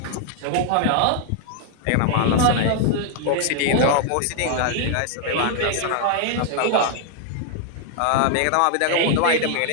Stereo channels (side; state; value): both; different; correlation 0.00